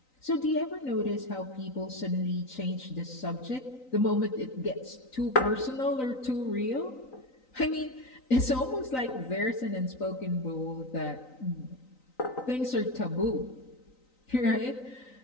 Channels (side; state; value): right; late; 3.9 ms